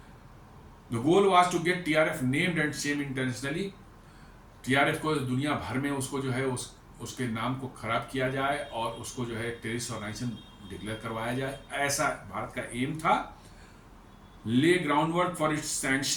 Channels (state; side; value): identical; both; correlation 1.00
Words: The goal was to get TRF named and shame internationally. TRF को दुनिया भर में उसको जो है उसके नाम को खराब किया जाए और उसको जो है टेररिस्ट ऑर्गेनाइजेशन डिक्लेयर करवाया जाए, ऐसा भारत का एम था। Lay groundwork for its